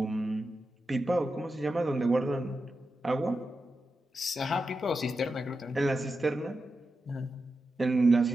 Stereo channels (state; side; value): normal; both; correlation 0.89